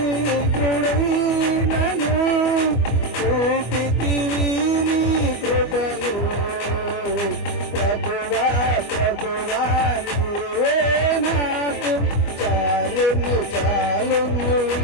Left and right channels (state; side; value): late; right; 24 ms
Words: చూపితివి నీ కృపను. ప్రభువా ప్రభువా నీవే నాకు చాలును చాలును